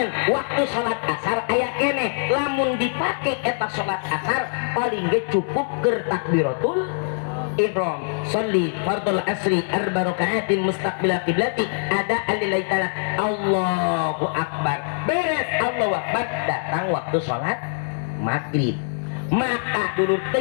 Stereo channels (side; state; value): right; silent; digital silence